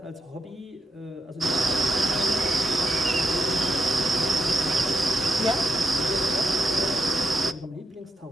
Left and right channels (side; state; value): both; normal; correlation 0.83